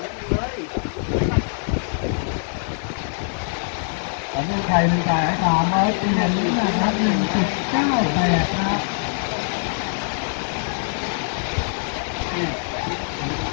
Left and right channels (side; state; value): right; silent; digital silence